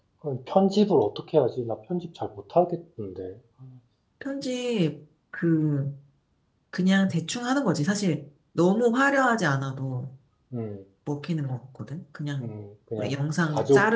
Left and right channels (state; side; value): identical; both; correlation 1.00